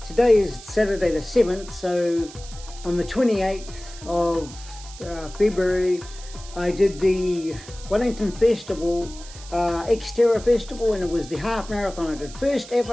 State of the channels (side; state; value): right; noise; hiss, 17 dB below the sound